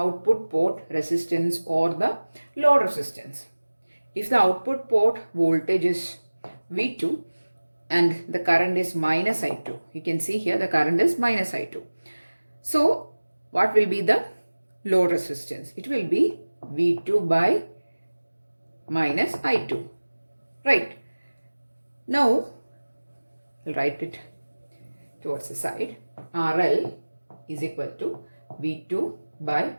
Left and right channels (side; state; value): both; inverted; correlation -1.00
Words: port resistance or the load resistance? If the output port voltage is V2 and the current is minus I2. You can see here the current is minus I2. So what will be the load resistance? It will be V2 by minus I2. Right. Now, I'll write it towards the side. RL is equal to V2 by